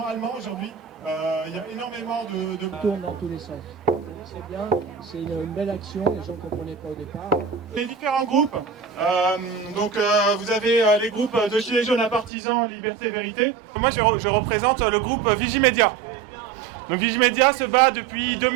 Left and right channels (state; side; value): drops out; left; at 12.3 s